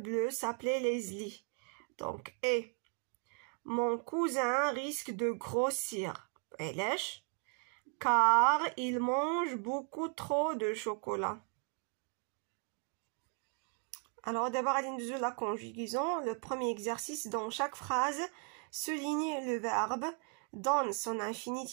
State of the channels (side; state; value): left; quieter; 37.3 dB